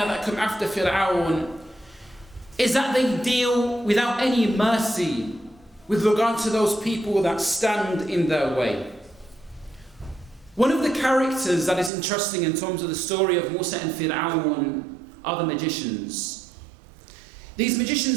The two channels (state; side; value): drops out; left; at 11.9 s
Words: that come after Fir'aun, is that they deal without any mercy with regard to those people that stand in their way. One of the characters that is interesting in terms of the story of Musa and Fir'aun are the magicians. These